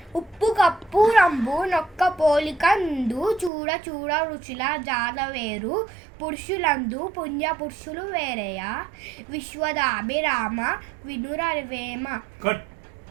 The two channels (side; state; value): left; drops out; at 3.5 s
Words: ఉప్పు కప్పు రంబు నొక్క పోలిక నుండు చూడ చూడ రుచుల జాడ వేరు పురుషులందు పుణ్య పురుషులు వేరయా విశ్వదాభిరామ వినురవేమ.